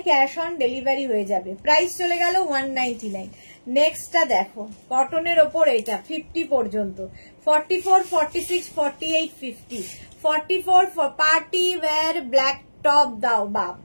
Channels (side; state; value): both; inverted; correlation -1.00